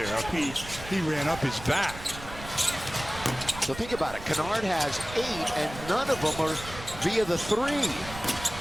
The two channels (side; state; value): right; noise; rumble, 13 dB below the sound